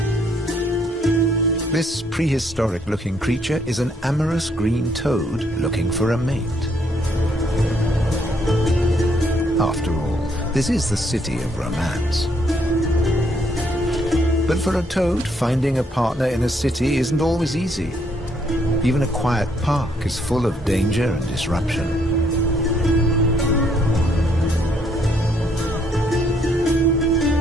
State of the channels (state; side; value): normal; both; correlation 0.70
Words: This prehistoric-looking creature is an amorous green toad looking for a mate. After all, this is the city of romance. But for a toad, finding a partner in a city isn't always easy. Even a quiet park is full of danger and disruption.